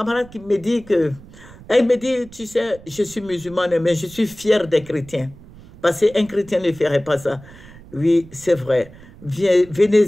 qui me dit elle me dit, tu sais, je suis musulmane, mais je suis fière des chrétiens. Parce qu'un chrétien ne ferait pas ça. Oui, c'est vrai.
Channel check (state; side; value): noise; right; rumble, 20 dB below the sound